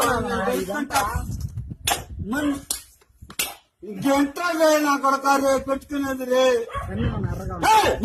ఇంకెంతలే నా కొడక రే పెట్టుకునేది రే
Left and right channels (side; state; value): both; identical; correlation 1.00